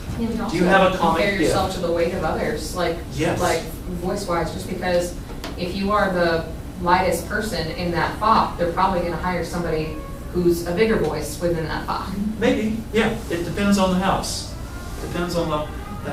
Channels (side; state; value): both; identical; correlation 1.00